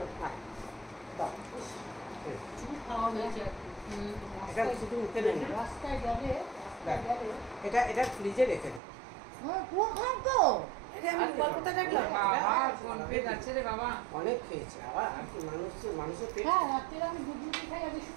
আয়। দাও। খাওয়া হয়েছে আর কি। এটা শুধু মুখে নে না। রাস্তায় গেলে দেখ, এটা ফ্রিজে রেখে দে। এটা আমি গল্পটা দেখলাম বাবা কোন পেট আছে রে বাবা। অনেক খেয়েছে আবার আর কি মানুষের পেট। হ্যাঁ রাত্রে আমি দুধ রুটি খাই আগে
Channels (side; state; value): left; drops out; at 8.8 s